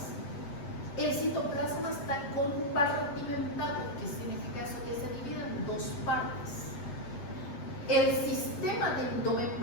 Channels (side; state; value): right; late; 8.1 ms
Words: el citoplasma está compartimentado. ¿Qué significa eso? Que se divide en dos partes. El sistema de